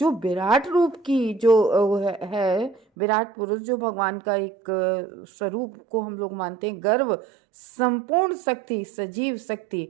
विराट रूप की जो है विराट पुरुष, जो भगवान का एक स्वरूप को हम लोग मानते हैं, गर्व, संपूर्ण शक्ति, सजीव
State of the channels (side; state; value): left; drops out; at 2.8 s